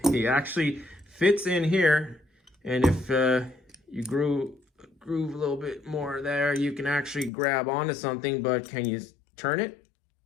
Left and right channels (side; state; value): right; drops out; at 7.3 s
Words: He actually fits in here. And if you groove a little bit more there, you can actually grab onto something, but can you turn it?